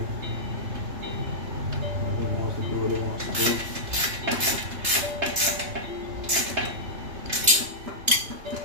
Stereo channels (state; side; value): late; left; 3.3 ms